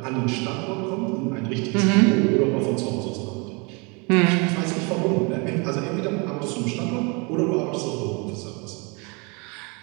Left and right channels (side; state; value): left; quieter; 30.6 dB